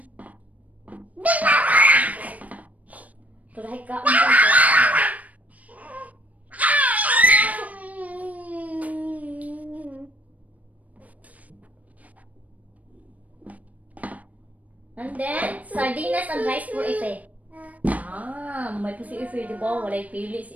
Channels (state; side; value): late; left; 0.071 ms